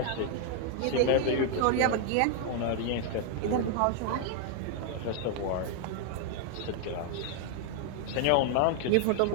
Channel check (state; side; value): different; both; correlation 0.00